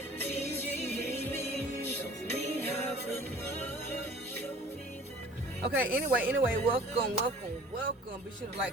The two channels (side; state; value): both; normal; correlation 0.48